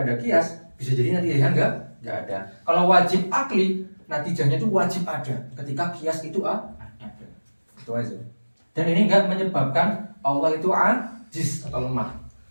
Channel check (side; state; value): both; inverted; correlation -1.00